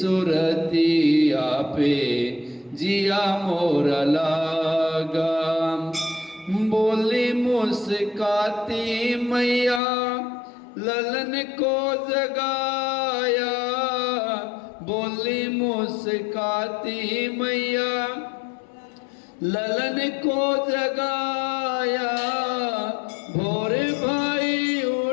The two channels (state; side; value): drops out; right; at 9.8 s